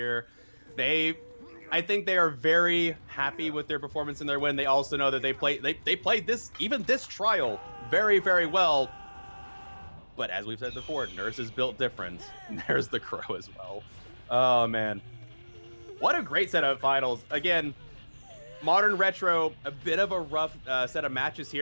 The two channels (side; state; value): both; inverted; correlation -1.00